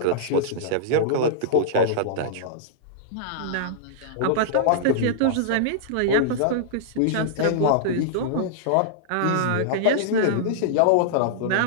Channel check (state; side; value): different; both; correlation -0.01